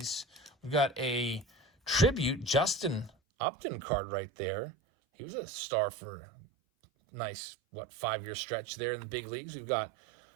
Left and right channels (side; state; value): left; drops out; at 3.1 s